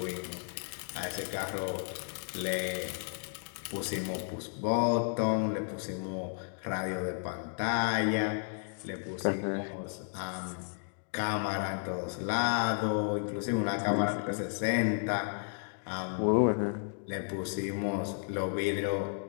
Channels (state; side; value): silent; right; 56 dB below the other